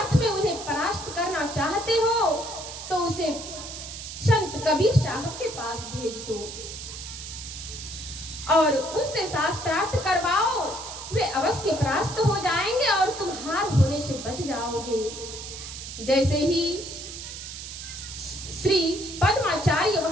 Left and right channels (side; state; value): right; noise; hiss, 10 dB below the sound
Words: में उन्हें परास्त करना चाहते हो, तो उसे संत कबीर साहब के पास भेज दो और उनसे शास्त्रार्थ करवाओ। वे अवश्य परास्त हो जाएंगे और तुम हार होने से बच जाओगे। जैसे ही श्री पद्माचार्य